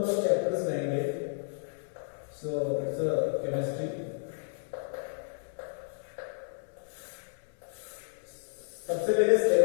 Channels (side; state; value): right; silent; digital silence